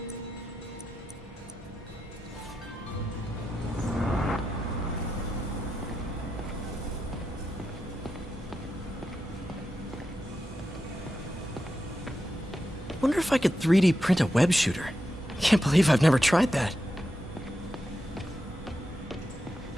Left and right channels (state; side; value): normal; both; correlation 0.88